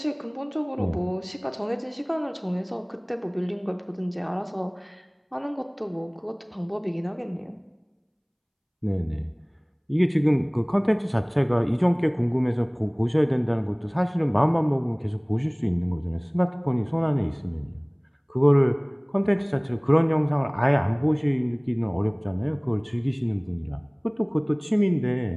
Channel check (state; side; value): identical; both; correlation 1.00